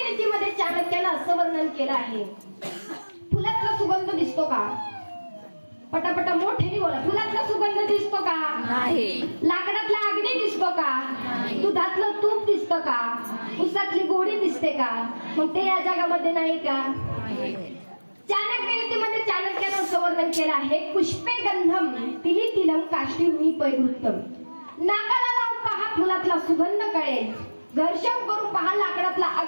नीतीमध्ये चाणक्यानं असं वर्णन केलं आहे, फुलातला सुगंध दिसतो का? पटापटा मोठ्याने बोला. फुलातला सुगंध दिसतो का? नाही. लाकडातला अग्नी दिसतो का? दुधातलं तूप दिसतं का? उसातली गोडी दिसते का? मग ते या जगामध्ये नाही का? चाणक्य नीतीमध्ये चाणक्यानं असं वर्णन केलं आहे, पुष्पे गंधम तिली तिलम काष्टी पैवृत्तम. नाकाला लावून पहा फुलातला सुगंध कळेल, घर्षण करून पहा लाकडातला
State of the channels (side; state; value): both; inverted; correlation -1.00